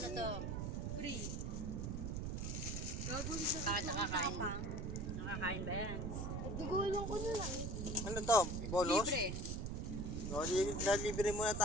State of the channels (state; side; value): noise; right; rumble, 2 dB below the sound